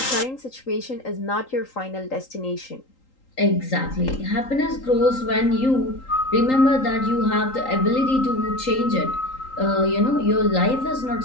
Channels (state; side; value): late; right; 3.8 ms